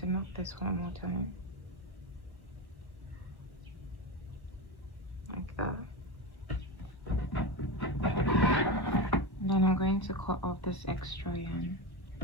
knot this one more time, like that. And then I'm going to cut off this extra yarn.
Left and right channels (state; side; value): late; right; 1.0 ms